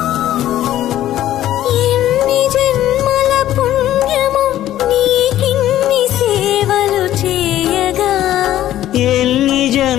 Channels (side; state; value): right; quieter; 13.0 dB